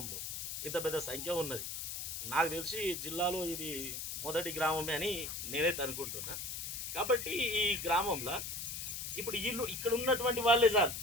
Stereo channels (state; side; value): noise; left; hiss, 5 dB below the sound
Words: ఇంత పెద్ద సంఖ్య ఉన్నది. నాకు తెలిసి జిల్లాలో ఇది మొదటి గ్రామమే అని నేనైతే అనుకుంటున్నా. కాబట్టి ఈ గ్రామంలో ఇప్పుడు వీళ్ళు ఇక్కడ ఉన్నటువంటి వాళ్ళే సార్,